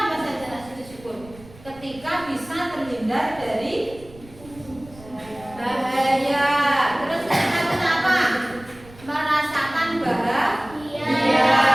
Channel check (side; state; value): right; noise; rumble, 21 dB below the sound